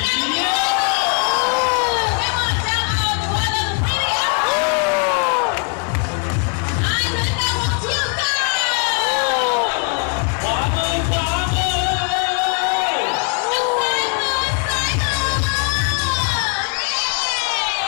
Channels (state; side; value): quieter; right; 36.9 dB